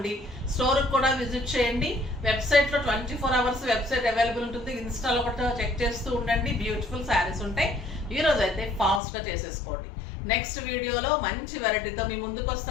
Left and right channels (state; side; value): drops out; right; at 9.0 s